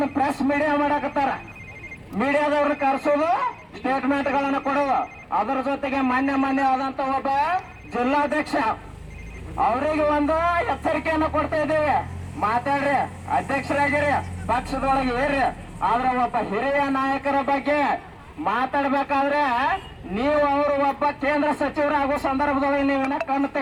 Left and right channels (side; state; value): both; identical; correlation 1.00